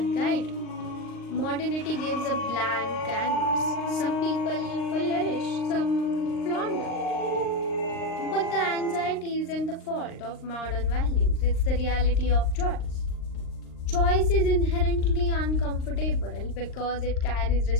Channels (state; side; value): late; right; 39 ms